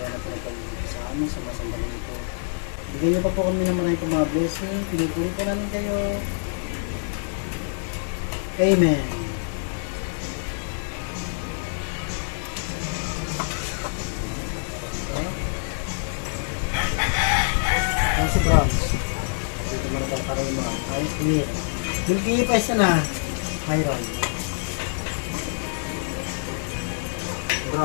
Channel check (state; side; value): silent; right; digital silence